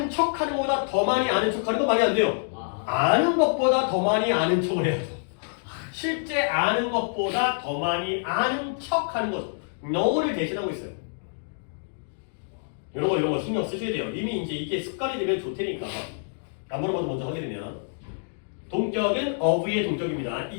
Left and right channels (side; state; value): right; silent; digital silence